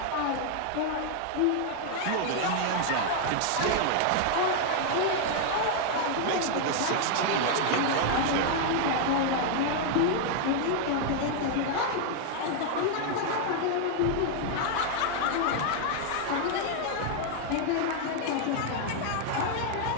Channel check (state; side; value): different; both; correlation 0.00